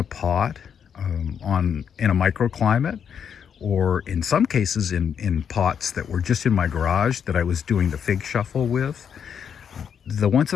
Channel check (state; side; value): quieter; right; 7.7 dB